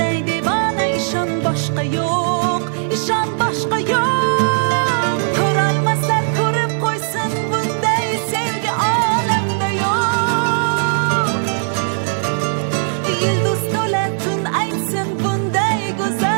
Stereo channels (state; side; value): silent; left; digital silence